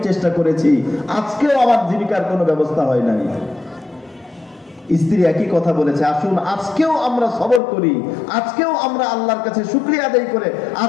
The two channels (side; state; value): right; drops out; at 7.6 s